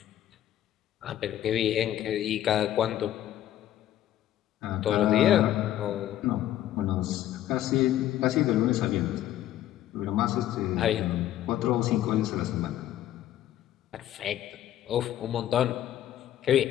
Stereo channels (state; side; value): quieter; right; 12.5 dB